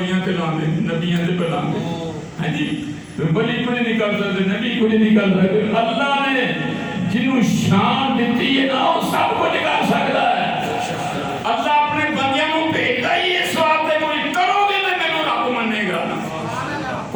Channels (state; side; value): identical; both; correlation 1.00